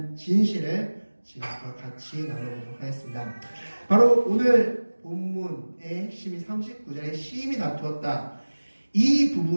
진실을 지금과 같이 나눠보도록 하겠습니다. 바로 오늘 본문의 핵심이 39절에 심히 다투었다. 이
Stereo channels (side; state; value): both; inverted; correlation -1.00